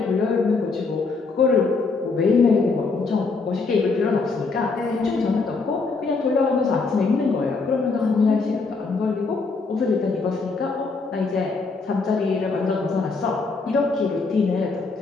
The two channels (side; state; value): right; quieter; 4.2 dB